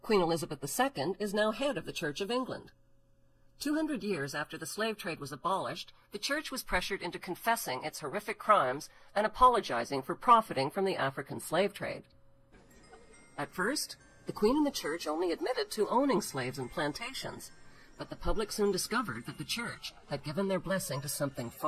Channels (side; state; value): both; identical; correlation 1.00